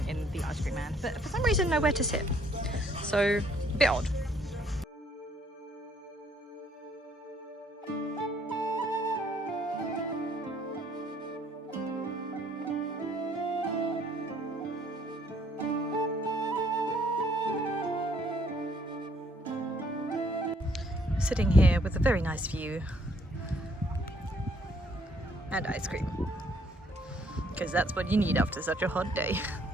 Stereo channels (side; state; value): both; normal; correlation 0.65